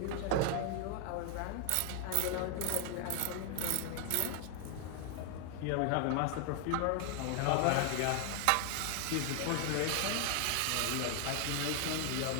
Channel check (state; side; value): different; both; correlation 0.00